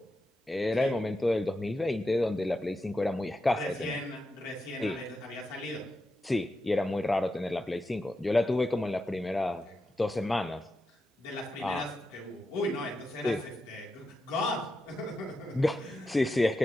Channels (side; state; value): both; normal; correlation 0.88